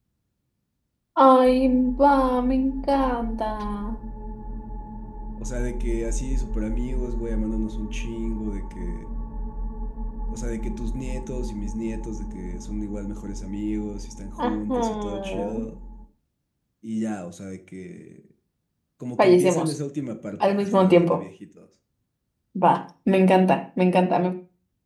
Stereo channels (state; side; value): identical; both; correlation 1.00